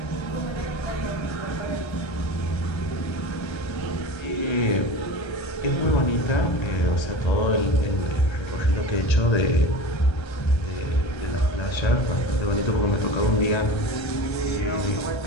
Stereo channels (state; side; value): late; right; 1.3 ms